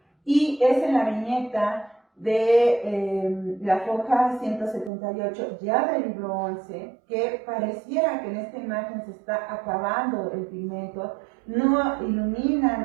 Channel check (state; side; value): drops out; left; at 4.9 s